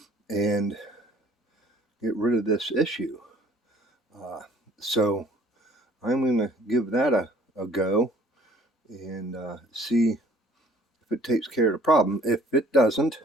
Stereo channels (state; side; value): normal; both; correlation 0.55